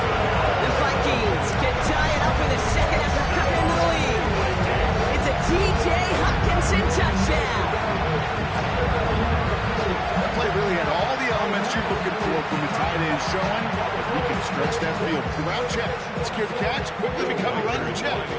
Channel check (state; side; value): identical; both; correlation 1.00